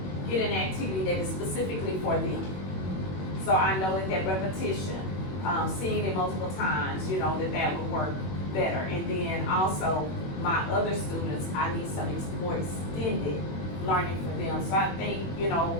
get an activity that is specifically for them. So I know that repetition, seeing it multiple times, you know, that would work better. And then also, my other students, I need some more extended learning for them. So I think, you know,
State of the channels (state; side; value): late; right; 21 ms